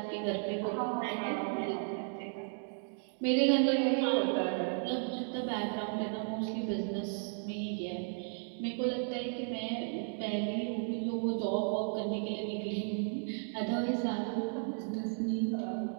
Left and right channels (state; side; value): silent; left; 55 dB below the other